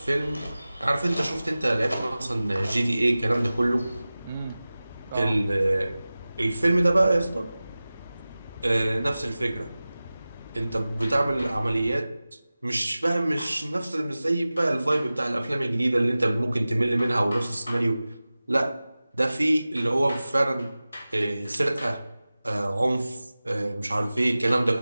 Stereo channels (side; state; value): both; inverted; correlation -0.97